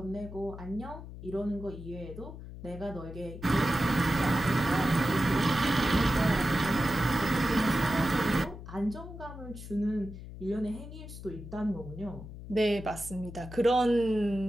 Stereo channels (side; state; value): left; noise; hum, 12 dB below the sound